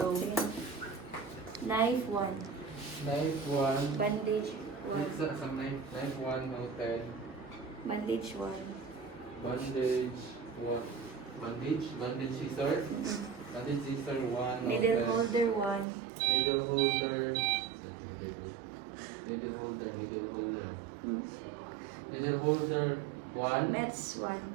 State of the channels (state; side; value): drops out; left; at 15.9 s